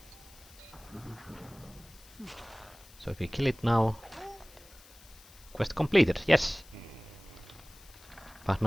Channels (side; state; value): left; noise; hiss, 22 dB below the sound